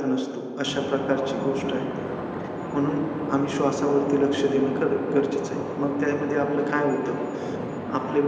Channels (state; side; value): identical; both; correlation 1.00